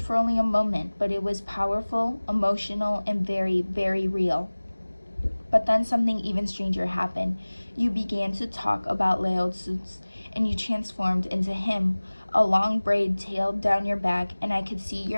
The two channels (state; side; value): inverted; both; correlation -1.00